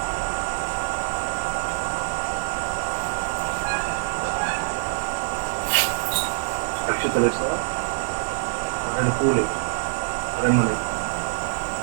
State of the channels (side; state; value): left; silent; digital silence